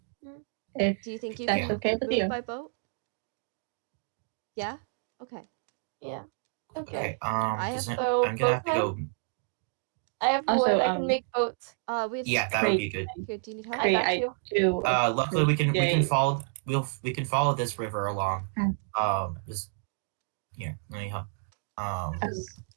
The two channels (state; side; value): silent; left; 58 dB below the other